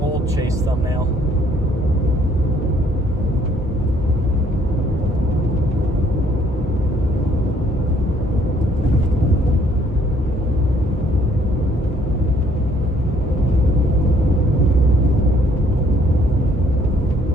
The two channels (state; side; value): normal; both; correlation 0.64